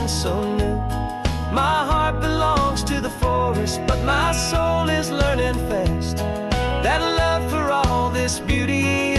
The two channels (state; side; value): identical; both; correlation 1.00